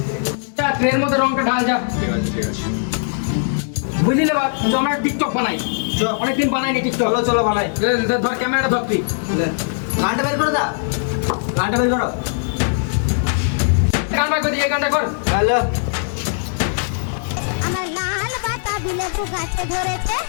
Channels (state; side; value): silent; right; digital silence